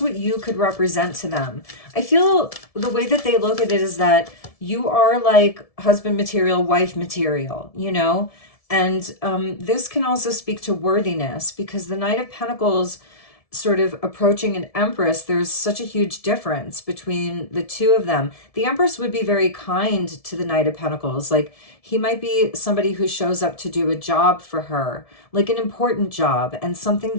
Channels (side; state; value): right; late; 1.7 ms